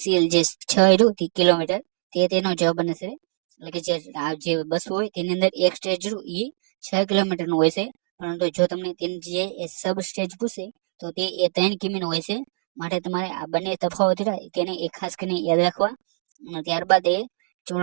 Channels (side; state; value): left; silent; 63 dB below the other